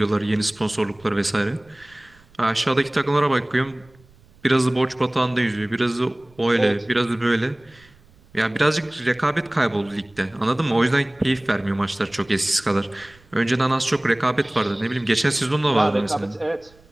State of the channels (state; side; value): noise; right; rumble, 29 dB below the sound